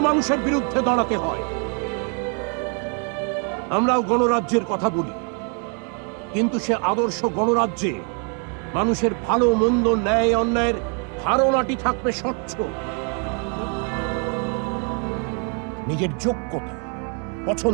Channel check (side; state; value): left; quieter; 38.9 dB